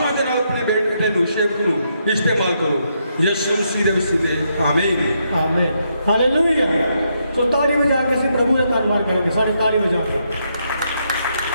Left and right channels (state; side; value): inverted; both; correlation -0.78